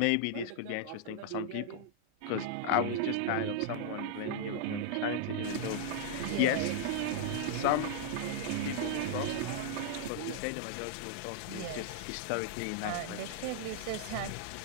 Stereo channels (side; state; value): both; different; correlation -0.01